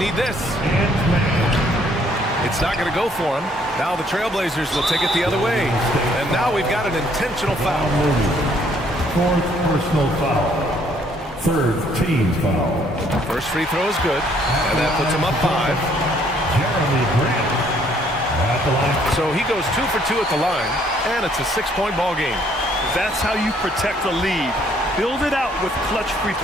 this. It's not going to go for him. Now the Trailblazers will take it the other way. And now we've got an intentional foul. Fourth personal foul. Third team foul. First free throw is good. And that puts him up 5. Jeremy Grant at the line. So he goes 2 for 2 at the line. And it's a 6-point ball game. That's how you protect a lead. Build it out with clutch free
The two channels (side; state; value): both; normal; correlation 0.65